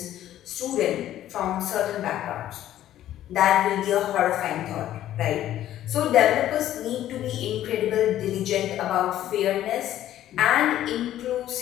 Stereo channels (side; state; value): right; quieter; 12.6 dB